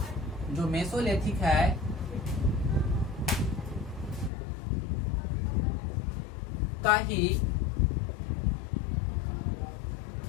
जो मेसोलिथिक है का ही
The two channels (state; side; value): drops out; right; at 4.3 s